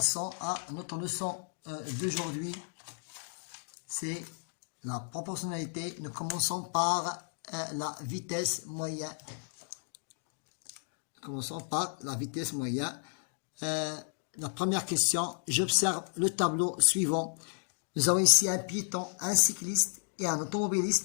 à notre leçon d'aujourd'hui, c'est la proportionnalité. Nous commençons par la vitesse moyenne. Commençons par la vitesse moyenne. La première question, j'observe le tableau suivant. Nous avons ici un piéton, un cycliste et un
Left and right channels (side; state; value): right; silent; digital silence